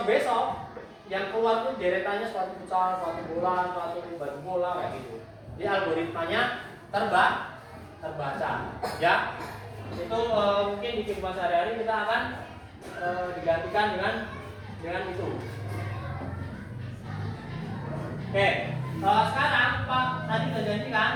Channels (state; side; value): identical; both; correlation 1.00